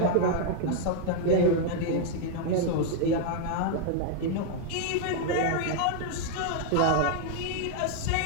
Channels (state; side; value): different; both; correlation 0.00